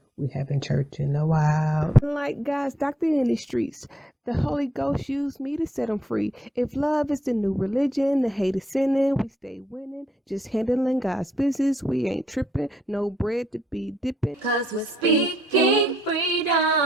We haven't church in a while. Like God's doctor in the streets, the Holy Ghost used me to set them free. If love is the new religion, the hate is sinning, we stay winning. Just handling God's business, we ain't tripping. No bread to be dipping. 'Cause we're speaking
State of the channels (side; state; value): both; normal; correlation 0.75